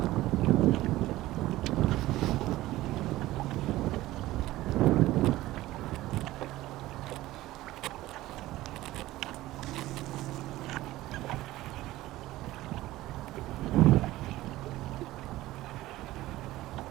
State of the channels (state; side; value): quieter; left; 16.7 dB